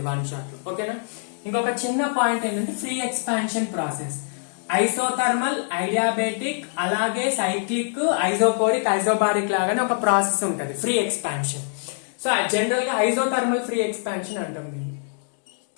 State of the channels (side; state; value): right; silent; digital silence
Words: వన్ షాట్ లో. ఓకేనా. ఇంకొక చిన్న పాయింట్ ఏంటంటే ఫ్రీ ఎక్స్పాన్షన్ ప్రాసెస్, ఐసోథర్మల్, ఐడియాబెటిక్, అలాగే సైక్లిక్, ఐసోకోరిక్, ఐసోబారిక్ లాగానే ఒక ప్రాసెస్ ఉంటుంది ఫ్రీ ఎక్స్పాన్షన్. సో జనరల్ గా ఐసోథర్మల్ ఫ్రీ ఎక్స్పాన్షన్ అంటాం దీన్ని.